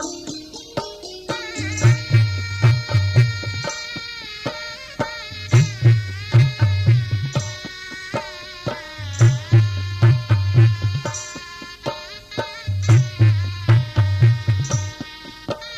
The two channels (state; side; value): identical; both; correlation 1.00